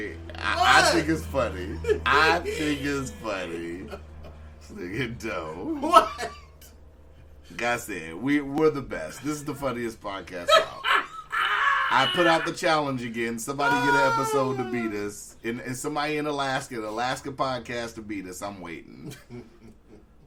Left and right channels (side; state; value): both; identical; correlation 1.00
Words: I What? think it's funny. I think it's funny. Nigga, dope. What? Like I said, we're the best. This is the funniest podcast out. I put out the challenge again. Somebody get an episode to beat us. And somebody in Alaska, an Alaska podcast to beat us. I'm waiting.